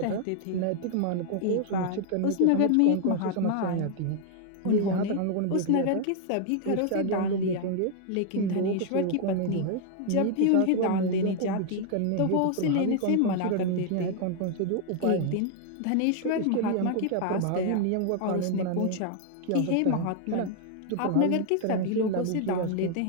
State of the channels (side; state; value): both; different; correlation 0.00